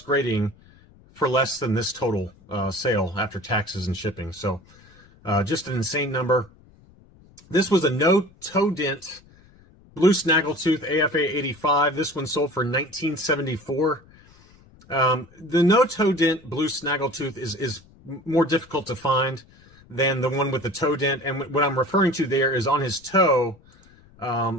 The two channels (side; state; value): left; noise; rumble, 27 dB below the sound